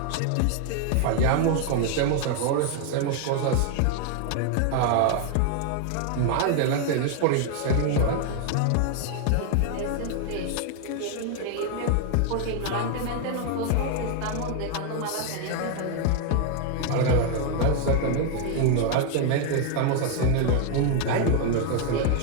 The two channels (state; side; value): different; both; correlation 0.00